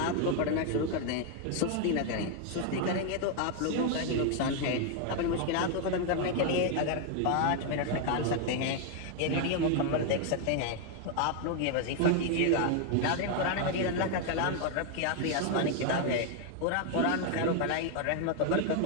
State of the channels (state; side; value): different; both; correlation 0.00